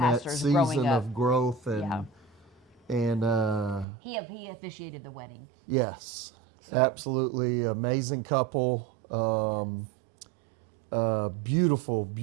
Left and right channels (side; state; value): left; drops out; at 3.9 s